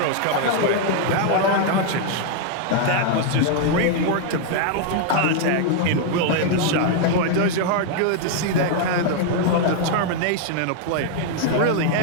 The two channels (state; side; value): different; both; correlation 0.00